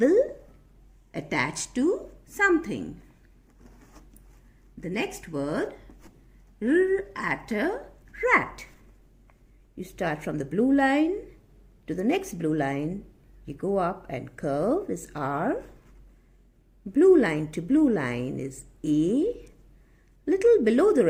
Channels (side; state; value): both; identical; correlation 1.00